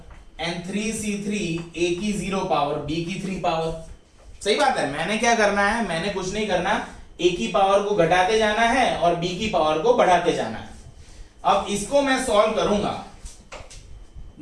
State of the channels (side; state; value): both; identical; correlation 1.00